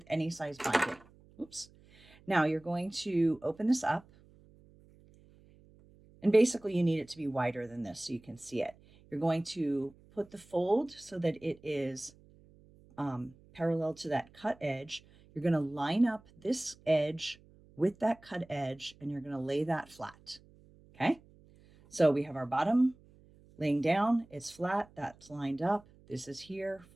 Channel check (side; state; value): right; noise; hum, 26 dB below the sound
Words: any size binding. Oops. Now you're going to open this up. And basically you need it to be wider than this so you can see it. You're going to put the fold so that it is parallel to that cut edge. You're going to line up this edge with that cut edge and you're going to lay that flat. Okay. So we have our bottom laying down. It's flat. That's lined up. This is here.